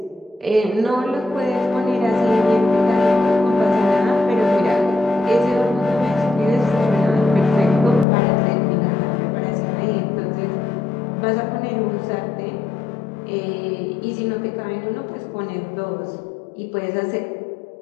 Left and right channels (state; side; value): drops out; right; at 8.1 s